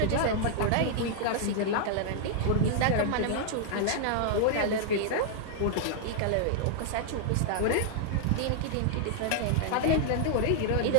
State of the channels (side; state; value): both; different; correlation -0.01